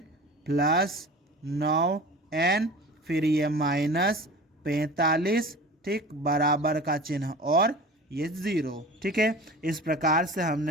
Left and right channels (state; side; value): normal; both; correlation 0.38